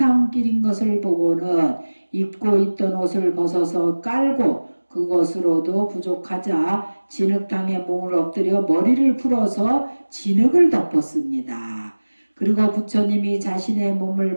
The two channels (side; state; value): both; inverted; correlation -1.00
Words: 것을 보고는 입고 있던 옷을 벗어서 깔고 그것으로도 부족하자 진흙탕에 몸을 엎드려 머리를 풀어서 진흙을 덮었습니다. 그리고 부처님이 자신의